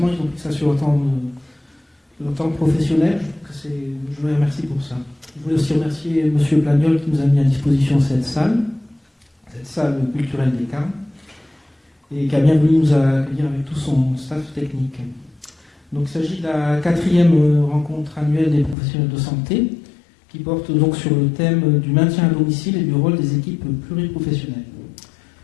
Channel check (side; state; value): right; drops out; at 18.8 s